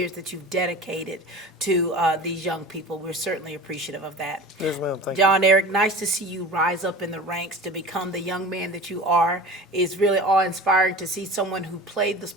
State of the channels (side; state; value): both; normal; correlation 0.36